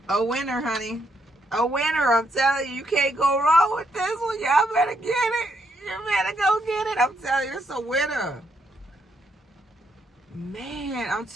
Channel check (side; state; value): both; normal; correlation 0.76